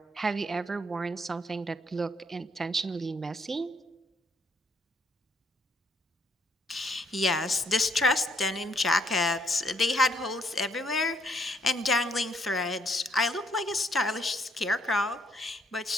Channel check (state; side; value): normal; both; correlation 0.69